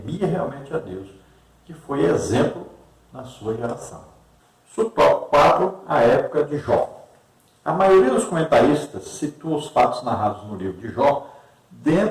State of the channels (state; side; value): identical; both; correlation 1.00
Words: realmente a Deus, que foi exemplo na sua geração. Subtópico 4, a época de Jó. A maioria dos comentaristas situa os fatos narrados no livro de Jó